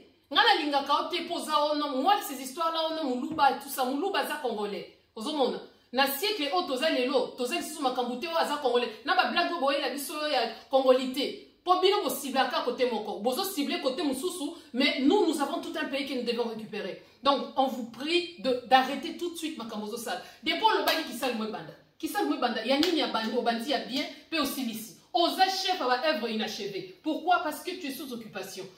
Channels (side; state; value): both; identical; correlation 1.00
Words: Ngana linga kaote poza ono, moi ces histoires là ono muluba et tout ça, muluba za congolais. Ozo mona. Na siècle o toza lelo, toza lisusu makambute o aza congolais. Na ba blague boye la biso ya congolité. Pour bien vous cibler à côté mon corps, vous ciblez côté Moussoussou, mais nous avons tout un pays que nous devons récupérer. Donc, on vous prie d'arrêter tout de suite Makamozo Sal. Depuis le bail qui sale banda, qui sale banda, Yanini a bandi, au bandi a bien, peut aussi ici. Osa chef à la œuvre inachevée. Pourquoi? Parce que tu es sous occupation.